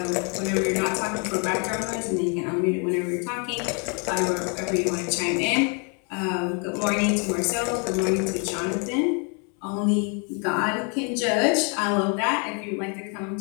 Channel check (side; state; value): right; quieter; 36.6 dB